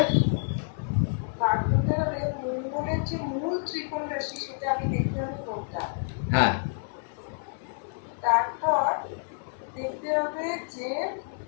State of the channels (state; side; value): silent; right; 59 dB below the other